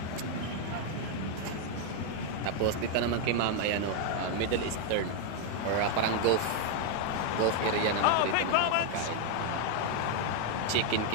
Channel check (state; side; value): different; both; correlation 0.00